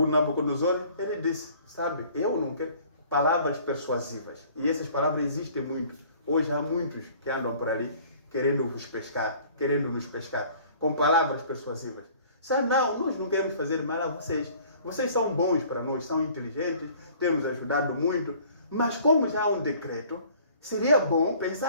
Nabucodonosor, ele disse, sabe, eu não quero palavras persuasivas. E essas palavras existem muito. Hoje há muitos que andam por ali querendo nos pescar, com palavras persuasivas. Sabe, não, nós não queremos fazer mal a vocês. Vocês são bons para nós, são inteligentes, temos ajudado muito. Mas como já há um decreto, seria bom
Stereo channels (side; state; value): both; inverted; correlation -0.53